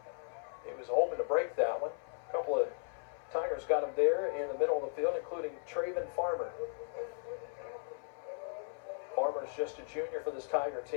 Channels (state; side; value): silent; right; 53 dB below the other